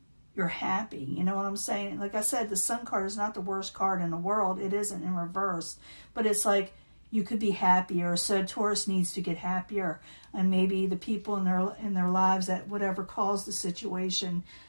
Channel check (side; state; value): both; inverted; correlation -1.00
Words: you're happy. You know what I'm saying? Like I said, the Sun card is not the worst card in the world. It isn't in reverse, but it's like you could be happier. So Taurus needs to get happier, and maybe the people in their lives that whatever caused the situation,